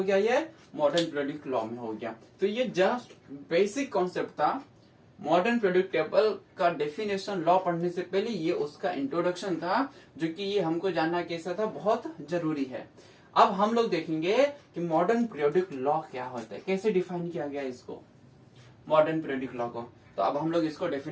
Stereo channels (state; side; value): identical; both; correlation 1.00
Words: गया, ये मॉडर्न पीरियोडिक लॉ में हो गया। तो ये जस्ट बेसिक कॉन्सेप्ट था। मॉडर्न पीरियोडिक टेबल का डेफिनेशन लॉ पढ़ने से पहले ये उसका इंट्रोडक्शन था, जो कि ये हमको जानना कैसा था, बहुत जरूरी है। अब हम लोग देखेंगे कि मॉडर्न पीरियोडिक लॉ क्या होता है, कैसे डिफाइन किया गया इसको, मॉडर्न पीरियोडिक लॉ को। तो अब हम लोग इसको